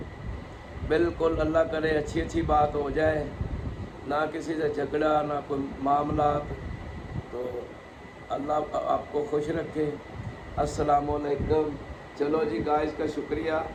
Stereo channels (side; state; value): both; identical; correlation 1.00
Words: بالکل اللہ کرے اچھی بات ہو جائے، نہ کسی سے جھگڑا، نہ کوئی معاملات. تو اللہ آپ کو خوش رکھے. السلام علیکم. چلو جی گائز کا شکریہ.